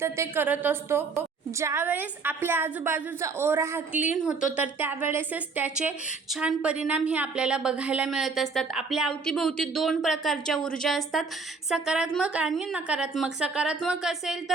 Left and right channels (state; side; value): quieter; left; 4.5 dB